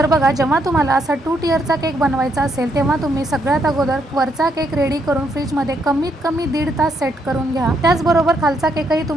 बघा, जेव्हा तुम्हाला असा 2 टियरचा केक बनवायचा असेल तेव्हा तुम्ही सगळ्यात अगोदर वरचा केक रेडी करून फ्रीजमध्ये कमीत कमी 1.5 तास सेट करून घ्या। त्याचबरोबर खालचा केकही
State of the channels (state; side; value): normal; both; correlation 0.75